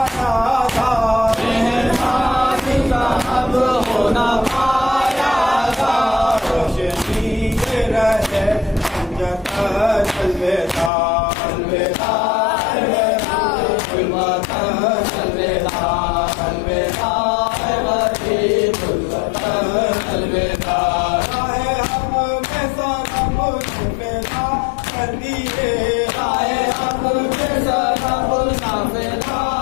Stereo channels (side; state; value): right; drops out; at 10.9 s